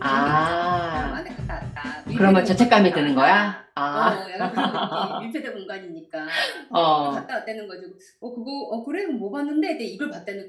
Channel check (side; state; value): both; identical; correlation 1.00